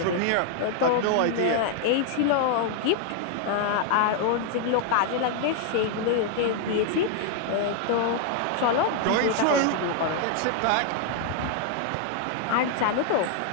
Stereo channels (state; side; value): different; both; correlation 0.00